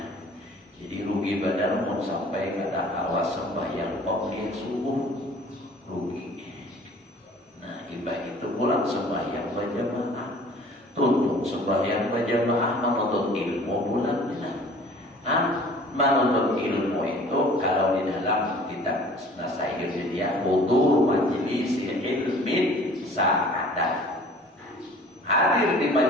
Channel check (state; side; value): normal; both; correlation 0.49